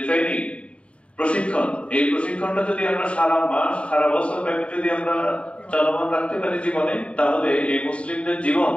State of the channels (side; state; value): right; late; 0.061 ms